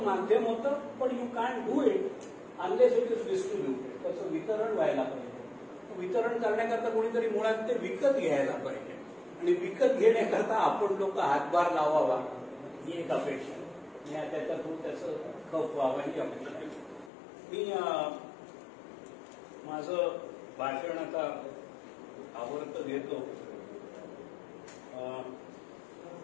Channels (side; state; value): right; drops out; at 17.1 s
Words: माध्यम होतं. पण you can do it unless it is distributed. त्याचं वितरण व्हायला पाहिजे. वितरण करण्याकरता कोणीतरी मुळात ते विकत घ्यायला पाहिजे आणि विकत घेण्याकरता आपण लोक हातभार लावावा ही एक अपेक्षा आहे. त्याच्यातून त्याचं खप व्हावं ही अपेक्षा आहे. मी माझं भाषण आता आवडतं घेतो.